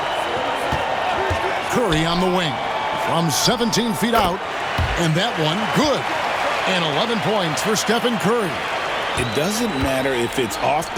Curry on the wing from 17 feet out. And that one good. And 11 points for Stephen Curry. It doesn't matter if it's off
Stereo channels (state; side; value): identical; both; correlation 1.00